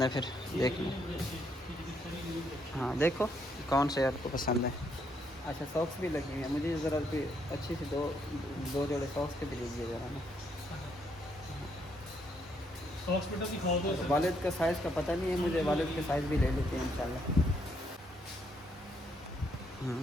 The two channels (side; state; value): both; normal; correlation 0.73